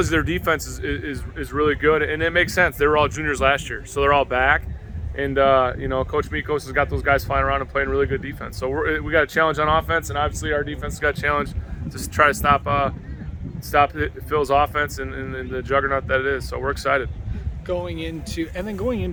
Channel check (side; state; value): both; identical; correlation 1.00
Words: you their defense is really good, and it makes sense. They were all juniors last year, so they're all back. And you know, Coach Mikos has got those guys flying around and playing really good defense. So we got a challenge on offense, and obviously our defense has got a challenge to try to stop Phil's offense and the juggernaut that it is. So we're excited. Going into